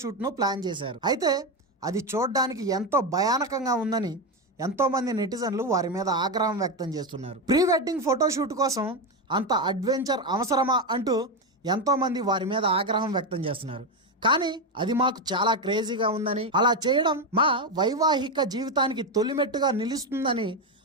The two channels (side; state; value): both; normal; correlation 0.10